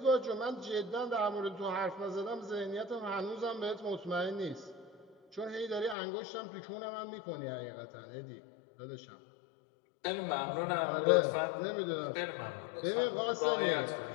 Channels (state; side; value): drops out; right; at 6.0 s